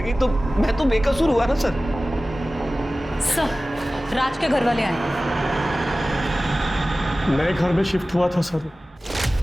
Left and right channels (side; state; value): both; normal; correlation 0.97